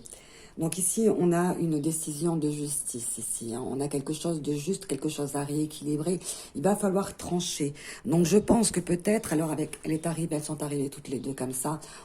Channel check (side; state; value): both; identical; correlation 1.00